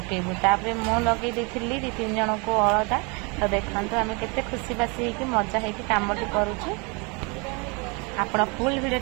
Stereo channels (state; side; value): quieter; left; 31.2 dB